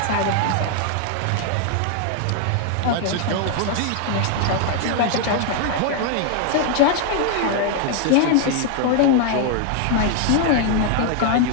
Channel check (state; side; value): different; both; correlation 0.00